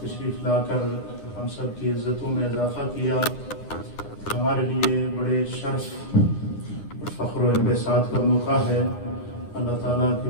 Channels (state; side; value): late; right; 9.8 ms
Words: تشریف لا کر ہم سب کی عزتوں میں اضافہ کیا. ہمارے لیے بڑے شرف اور فخر و انبساط کا موقع ہے. اللہ تعالیٰ